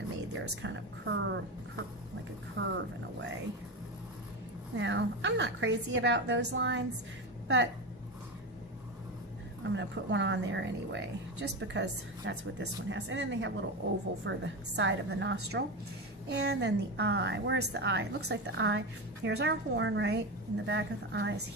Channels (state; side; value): normal; both; correlation 0.19